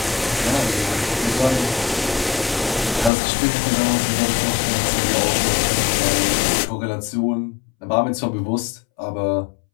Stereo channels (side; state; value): right; drops out; at 3.1 s